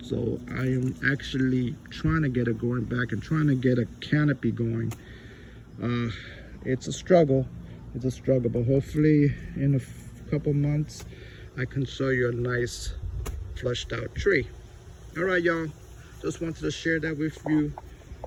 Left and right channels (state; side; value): identical; both; correlation 1.00